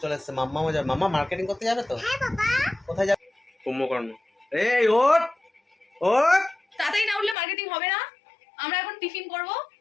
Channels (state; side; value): drops out; right; at 7.4 s